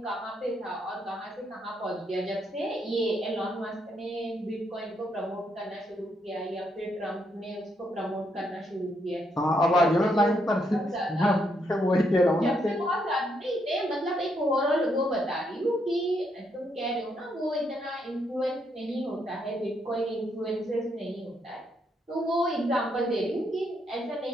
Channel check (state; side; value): normal; both; correlation 0.76